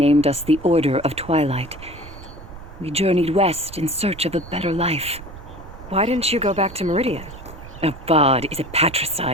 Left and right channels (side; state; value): right; noise; rumble, 15 dB below the sound